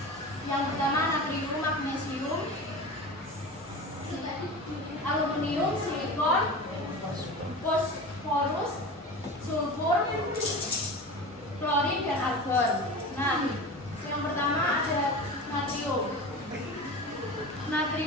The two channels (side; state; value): both; normal; correlation 0.31